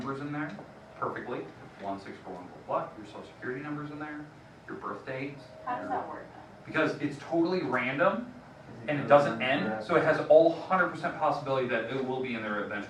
in there perfectly, 1641, blah, blah, your social security number's in there, your birth dates. How does that work then? Because it's totally random and it doesn't end, so it has all 100% possibility that it will be in there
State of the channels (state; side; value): identical; both; correlation 1.00